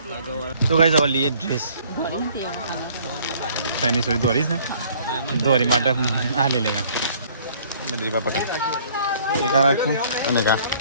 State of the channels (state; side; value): inverted; both; correlation -0.58